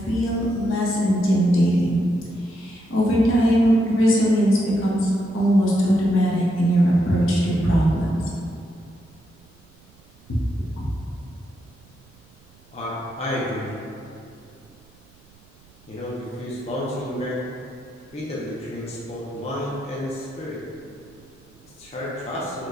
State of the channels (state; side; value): noise; right; rumble, 28 dB below the sound